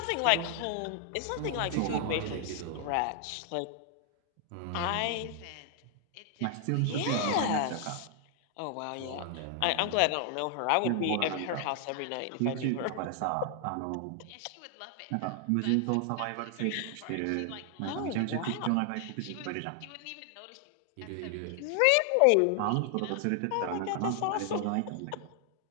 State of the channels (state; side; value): different; both; correlation 0.00